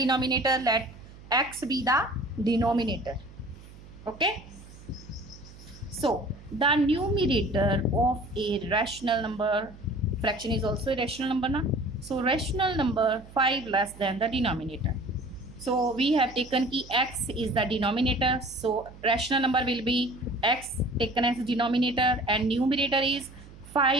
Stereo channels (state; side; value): noise; right; hum, 19 dB below the sound